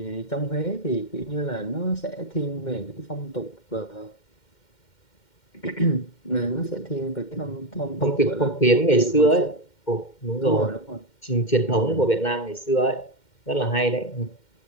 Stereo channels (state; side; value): late; right; 2.1 ms